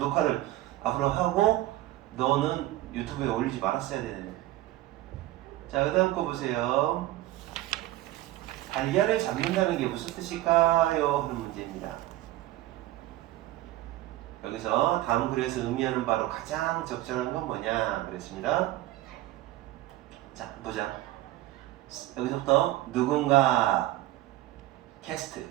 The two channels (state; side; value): quieter; left; 16.0 dB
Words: 하고 너는 유튜브에 올리지 말았어야 되는데. 자, 그 다음 거 보세요. 달걀을 잡는다는 게 무슨 뜻일까요? 하는 문제입니다. 여기서 다음 글에서 의미하는 바로 가장 적절한 건 뭐냐 그랬습니다. 자, 보자. 여기서부터 누군가 캐스트,